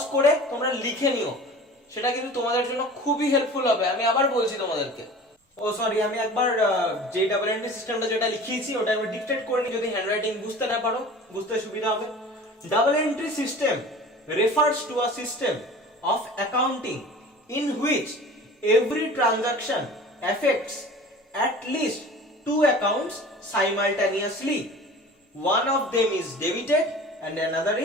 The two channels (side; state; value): both; normal; correlation 0.40